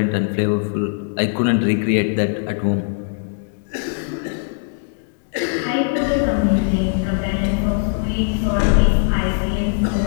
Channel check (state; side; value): silent; right; digital silence